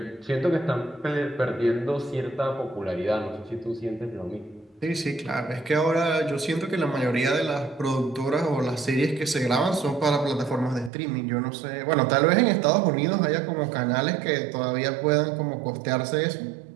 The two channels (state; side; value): drops out; left; at 10.9 s